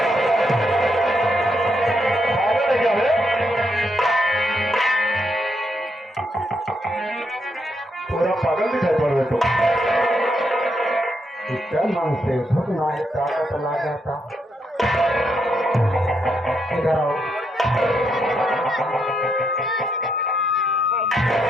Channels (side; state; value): both; normal; correlation 0.79